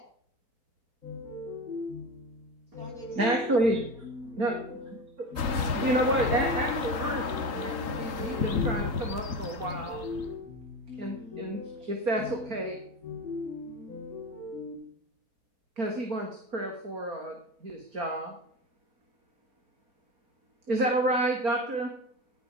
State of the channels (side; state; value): left; late; 3.8 ms